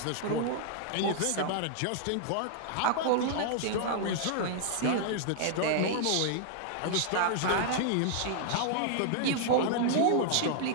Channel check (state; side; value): different; both; correlation -0.01